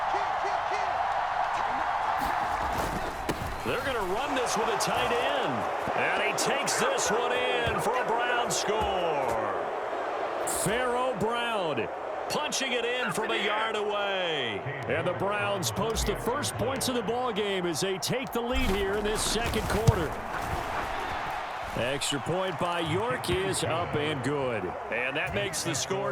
They're going to run this with a tight end. And he takes this one in for a Brown score. Pharaoh Brown punching it in from a yard away. And the Browns post the first points of the ball game as they take the lead here in this second quarter. Extra point by York is up and good. And that makes the score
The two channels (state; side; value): identical; both; correlation 1.00